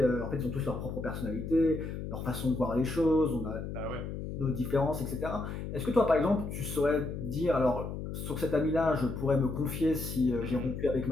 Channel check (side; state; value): left; noise; hum, 6 dB below the sound